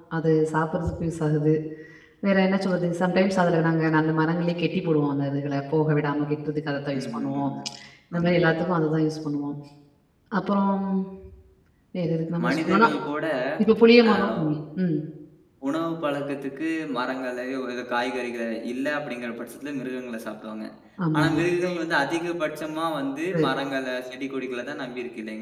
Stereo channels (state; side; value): identical; both; correlation 1.00